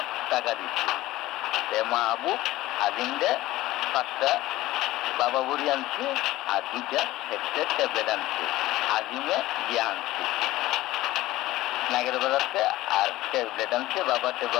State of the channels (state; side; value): quieter; right; 16.8 dB